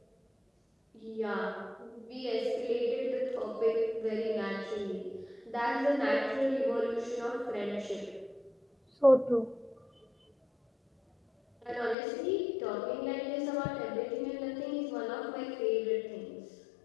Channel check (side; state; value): right; drops out; at 12.0 s